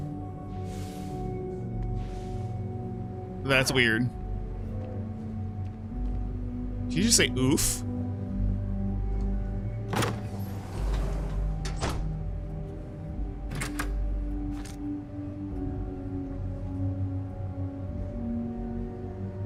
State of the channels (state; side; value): identical; both; correlation 1.00